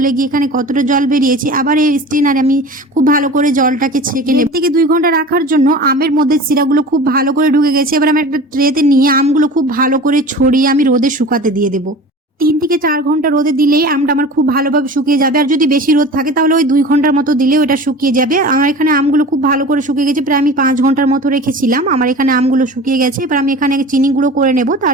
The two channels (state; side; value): normal; both; correlation 0.37